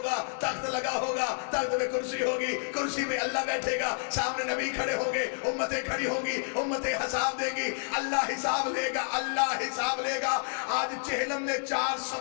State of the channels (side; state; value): right; silent; 58 dB below the other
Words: तख्त लगा होगा, तख्त में कुर्सी होगी, कुर्सी में अल्लाह बैठेगा, सामने नबी खड़े होंगे, उम्मतें खड़ी होंगी, उम्मतें हिसाब देगी, अल्लाह हिसाब लेगा, अल्लाह हिसाब लेगा। आज चेहलम ने 4